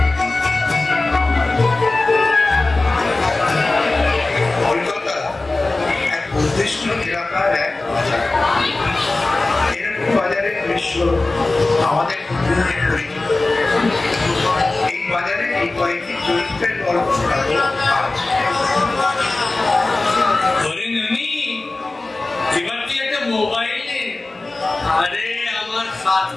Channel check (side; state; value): right; quieter; 3.2 dB